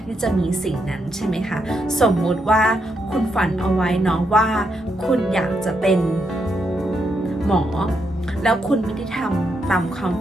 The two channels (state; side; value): normal; both; correlation 0.80